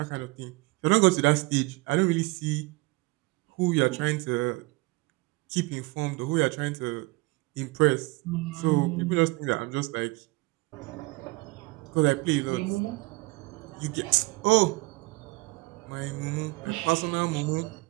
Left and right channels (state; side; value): quieter; left; 23.8 dB